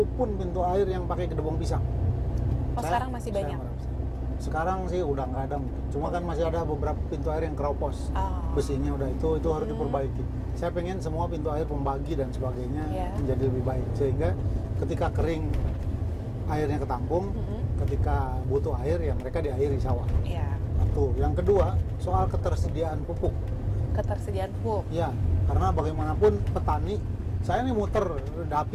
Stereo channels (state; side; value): identical; both; correlation 1.00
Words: pintu air yang pakai Gedebong Pisang. Sekarang masih banyak? Sekarang sih udah nggak ada, cuma kan masih ada beberapa pintu air yang keropos. Besinya udah itu harus diperbaiki. Saya pengen semua pintu air pembagi dan sebagainya menjadi lebih baik, sehingga ketika kering airnya ketampung, ketika butuh air ya mereka diairi sawah. Satu. Yang kedua, soal ketersediaan pupuk. Ya, karena bagaimanapun petani, saya nih muter